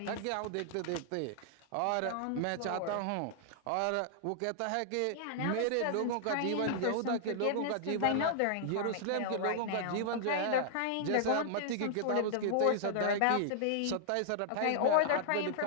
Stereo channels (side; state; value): both; different; correlation -0.01